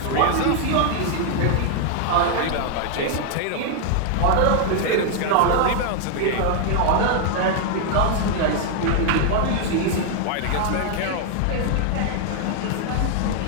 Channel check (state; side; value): different; both; correlation 0.00